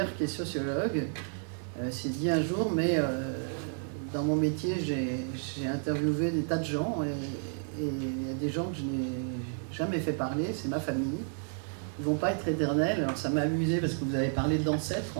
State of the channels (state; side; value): silent; left; 57 dB below the other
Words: qui est sociologue s'est dit un jour, mais dans mon métier j'ai interviewé des tas de gens et il y a des gens que je n'ai jamais fait parler, c'est ma famille. Ils ne vont pas être éternels. Alors ça m'a amusé parce que vous avez parlé d'ancêtres